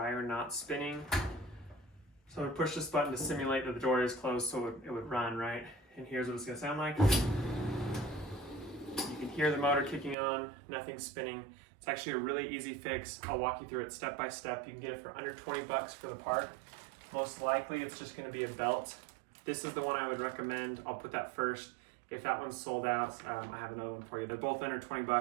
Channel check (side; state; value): left; drops out; at 10.2 s